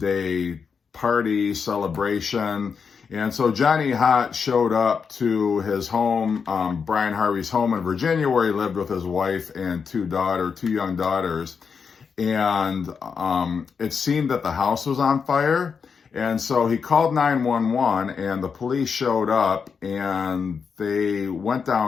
party celebration. And so Johnny Hott showed up to his home, Bryan Harvey's home in Virginia, where he lived with his wife and two young daughters. And it seemed that the house was on fire. And so he called 911, and the police showed up, and they went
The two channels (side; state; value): right; quieter; 6.0 dB